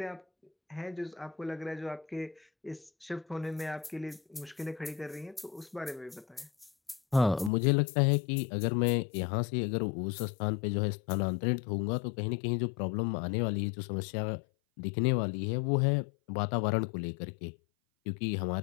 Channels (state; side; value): drops out; right; at 7.5 s